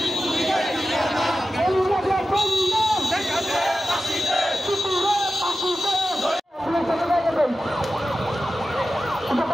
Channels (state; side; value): normal; both; correlation 0.94